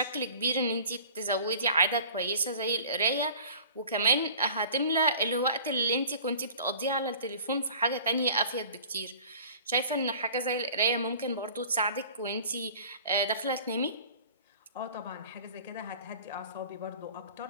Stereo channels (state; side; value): inverted; both; correlation -0.45